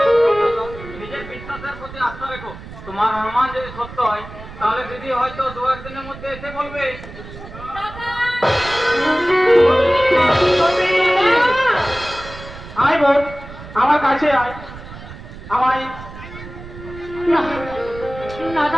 নিজের বিশ্বাসের প্রতি আস্থা রেখো। তোমার অনুমান যদি সত্য হয় তাহলে দিদি হয়তো 2-1 দিনের মধ্যে এসে বলবে। আয় বোন, আমার কাছে আয়। আমায় না না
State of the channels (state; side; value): noise; right; rumble, 14 dB below the sound